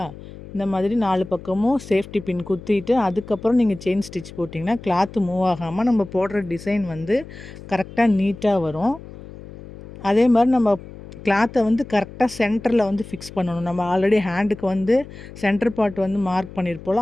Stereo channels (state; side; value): noise; left; hum, 16 dB below the sound